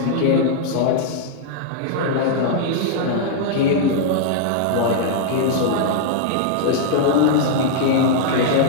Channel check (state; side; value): different; both; correlation -0.01